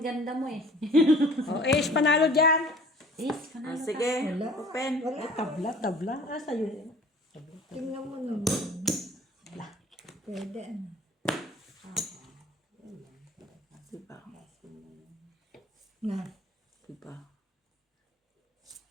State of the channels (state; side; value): normal; both; correlation 0.49